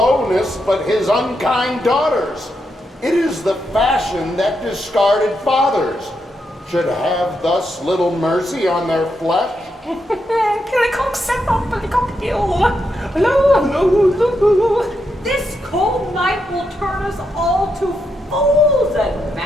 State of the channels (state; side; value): normal; both; correlation 0.82